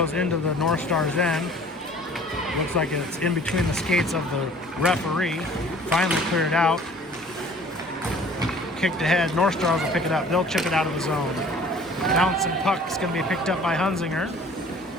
into the North Stars end. Looks like it's in between the skates of the referee. Finally cleared out. Kicked ahead. North Stars will pick it up. They'll chip it out of the zone. Bouncing puck is going to be picked up by Hunzinger.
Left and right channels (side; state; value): both; normal; correlation 0.50